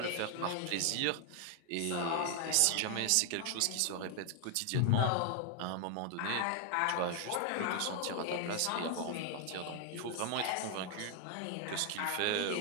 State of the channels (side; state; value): both; different; correlation 0.00